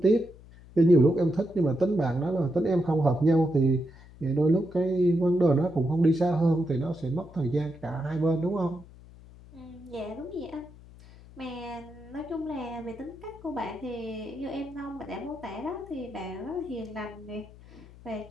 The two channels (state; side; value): noise; left; hum, 21 dB below the sound